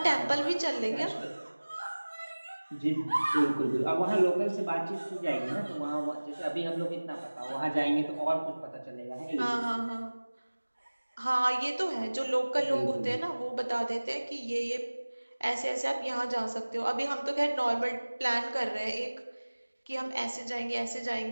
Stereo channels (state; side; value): inverted; both; correlation -1.00